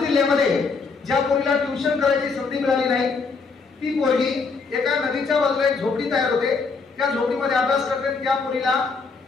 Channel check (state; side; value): quieter; right; 4.6 dB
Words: ज्या पोरीला ट्युशन करायची संधी मिळाली नाही, ती पोरगी एका नदीच्या बाजूला एक झोपडी तयार होते. त्या झोपडीमध्ये अभ्यास करते. त्या पोरीला